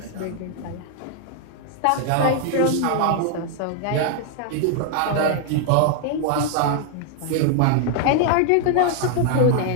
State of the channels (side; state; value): both; different; correlation 0.00